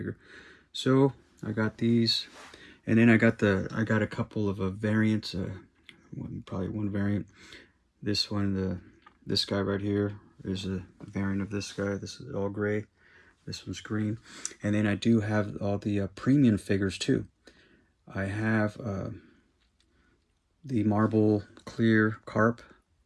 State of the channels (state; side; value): identical; both; correlation 1.00